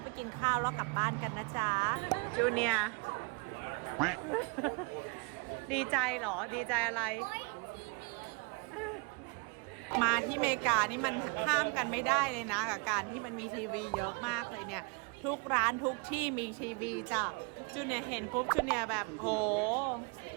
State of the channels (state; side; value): quieter; left; 31.9 dB